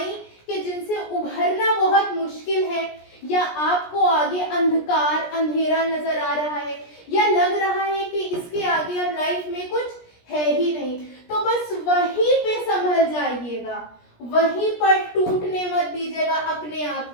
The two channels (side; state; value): right; late; 17 ms